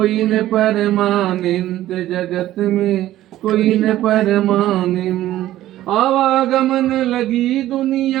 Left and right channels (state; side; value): quieter; left; 14.2 dB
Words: न परमानेंट, जगत में कोई न परमानेंट। आवागमन लगी